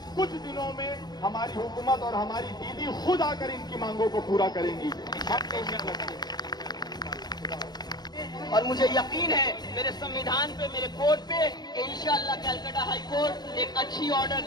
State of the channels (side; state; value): right; late; 0.20 ms